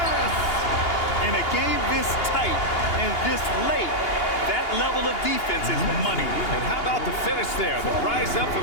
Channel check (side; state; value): right; late; 2.8 ms